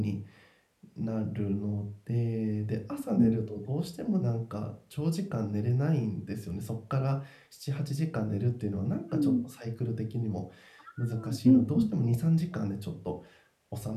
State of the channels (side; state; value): both; identical; correlation 1.00